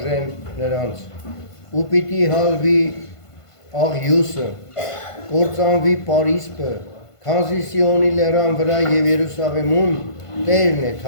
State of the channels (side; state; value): right; late; 1.5 ms